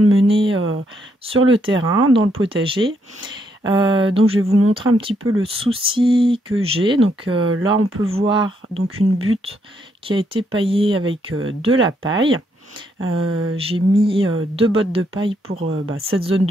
mener sur le terrain, dans le potager. Donc je vais vous montrer un petit peu le souci que j'ai. Donc là on peut voir donc une butte qui a été paillée avec de la paille. J'ai mis 2 bottes de paille pour cette zone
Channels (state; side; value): normal; both; correlation 0.75